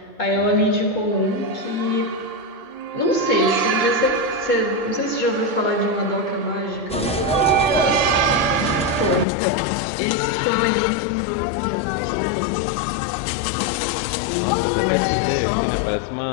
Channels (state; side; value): drops out; right; at 9.2 s